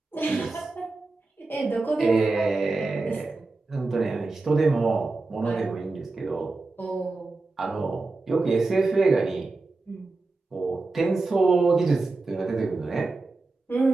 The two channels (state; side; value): quieter; left; 3.5 dB